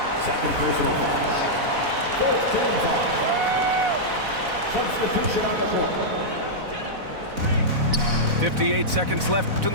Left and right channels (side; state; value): left; late; 4.0 ms